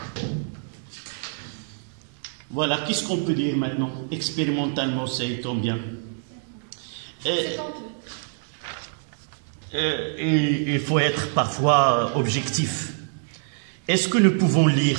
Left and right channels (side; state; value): left; silent; digital silence